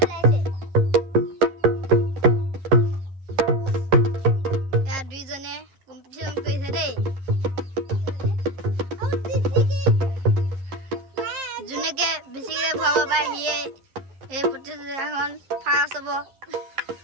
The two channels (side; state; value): left; late; 11 ms